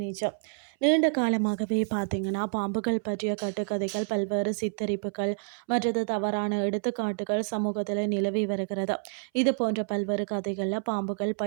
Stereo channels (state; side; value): silent; left; 59 dB below the other